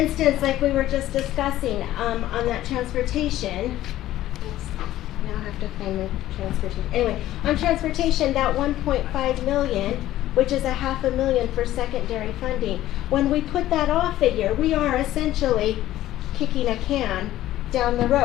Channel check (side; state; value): right; quieter; 14.2 dB